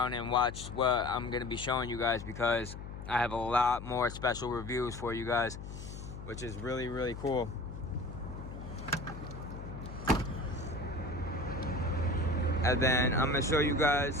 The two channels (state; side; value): noise; left; hum, 10 dB below the sound